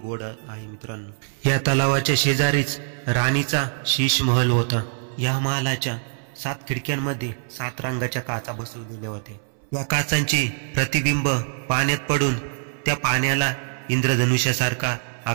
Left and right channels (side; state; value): left; silent; 63 dB below the other